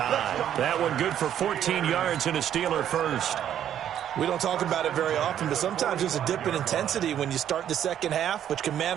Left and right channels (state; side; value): quieter; left; 10.3 dB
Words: That one good for 14 yards and a Steeler first. We don't talk about it very often, but sometimes there's a dip in intensity when you start the second half, which can